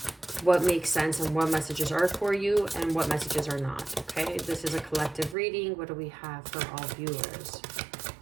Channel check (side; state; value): left; drops out; at 5.4 s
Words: what makes sense and what messages are for you and what messages are not. Okay, this is a collective reading. What do we have for all viewers?